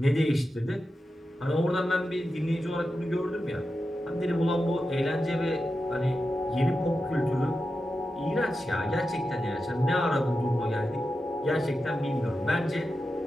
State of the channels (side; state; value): both; normal; correlation 0.90